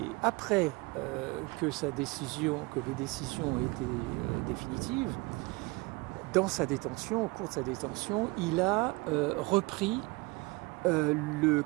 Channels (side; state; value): left; quieter; 25.2 dB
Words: après que les décisions ont été définitives, dans sa détention, au cours de sa détention, il a repris le